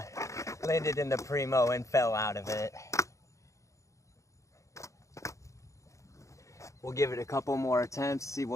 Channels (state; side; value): late; right; 0.15 ms